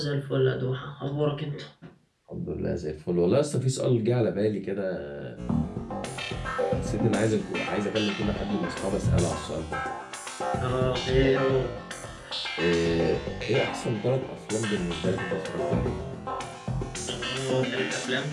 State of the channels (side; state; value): both; identical; correlation 1.00